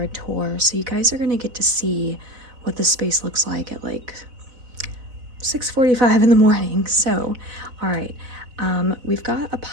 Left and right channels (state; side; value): late; left; 4.0 ms